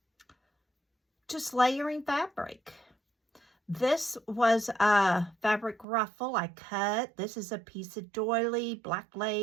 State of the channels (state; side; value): drops out; left; at 5.9 s